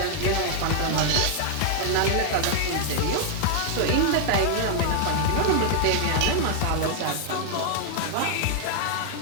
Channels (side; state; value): both; different; correlation 0.00